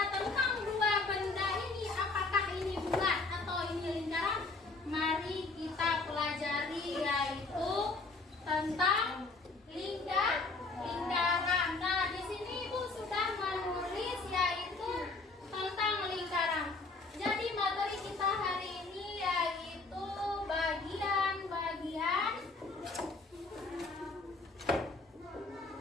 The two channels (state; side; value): quieter; right; 3.7 dB